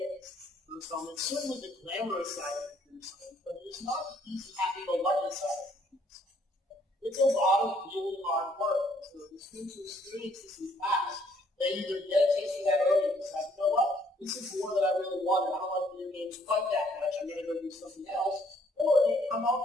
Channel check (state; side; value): normal; both; correlation 0.65